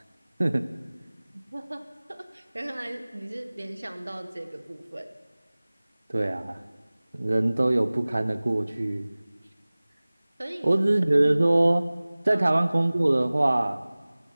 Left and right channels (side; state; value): both; inverted; correlation -1.00